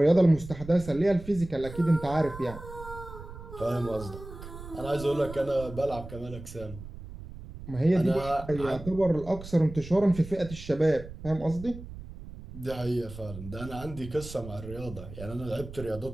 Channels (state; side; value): noise; right; rumble, 13 dB below the sound